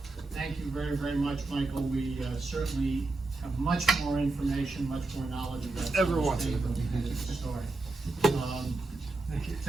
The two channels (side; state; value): left; quieter; 3.2 dB